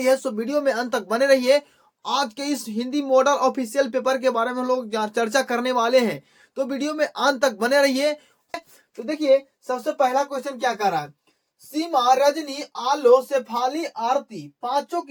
है। सो वीडियो में अंत तक बने रहिए। आज के इस हिंदी मॉडल ऑफिशियल पेपर के बारे में हम लोग चर्चा करने वाले हैं, तो वीडियो में अंत तक बने रहिए। तो देखिए, सबसे पहला क्वेश्चन क्या कर रहा है। सीमा, रजनी, आलो, शेफाली, आरती पांचों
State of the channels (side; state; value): both; identical; correlation 1.00